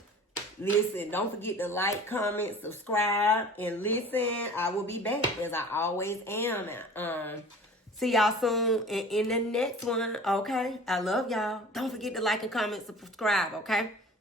Listen, don't forget to like, comment, subscribe, and listen. I will be back as I always am. See y'all soon in the next one. Okay, I love y'all. Don't forget to like and comment, subscribe. Okay,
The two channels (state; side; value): normal; both; correlation 0.43